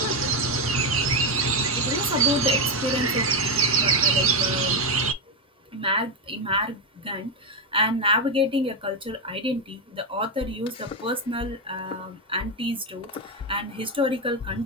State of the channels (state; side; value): normal; both; correlation 0.07